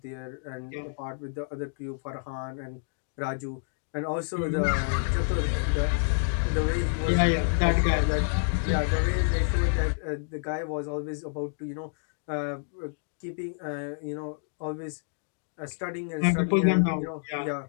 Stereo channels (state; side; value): silent; right; digital silence